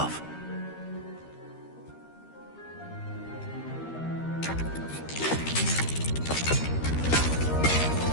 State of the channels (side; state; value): right; late; 13 ms